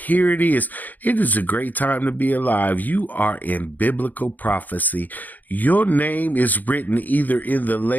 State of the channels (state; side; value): late; right; 0.083 ms